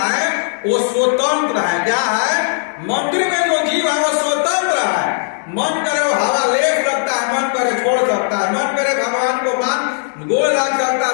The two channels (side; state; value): right; silent; digital silence